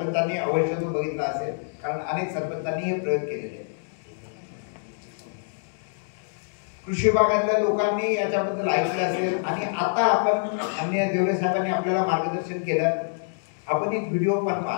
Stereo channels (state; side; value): silent; right; digital silence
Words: अवश्य तो बघितला असेल, कारण अनेक सरपंचांनी हे प्रयोग केलेले आहेत. कृषी विभागातल्या लोकांनी याच्याबद्दल ऐकलं असेल आणि आता आपण अन्य देवरे साहेबांनी आपल्याला मार्गदर्शन केलं. आपण एक व्हिडिओ पण